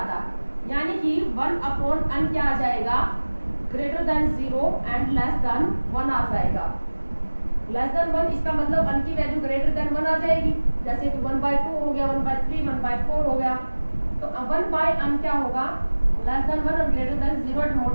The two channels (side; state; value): both; inverted; correlation -1.00